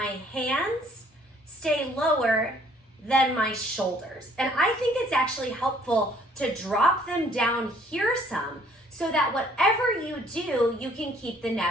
hands stay lower than my shoulders. And I think it's actually helpful to drop them down here some so that whatever you do, you can keep the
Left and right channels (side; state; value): both; normal; correlation 0.60